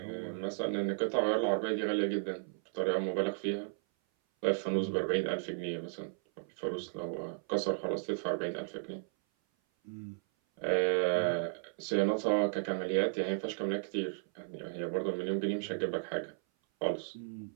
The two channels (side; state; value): left; silent; 55 dB below the other